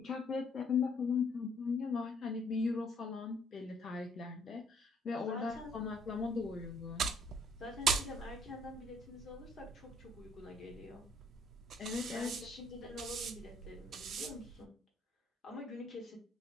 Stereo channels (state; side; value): normal; both; correlation 0.64